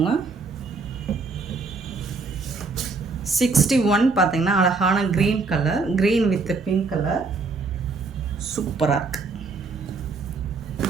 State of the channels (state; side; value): quieter; left; 4.3 dB